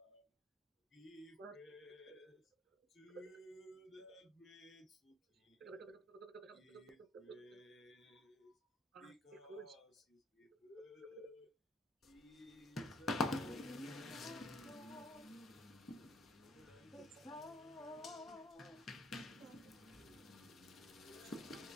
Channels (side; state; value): both; normal; correlation 0.62